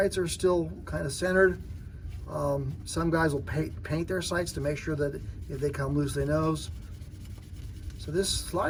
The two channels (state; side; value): identical; both; correlation 1.00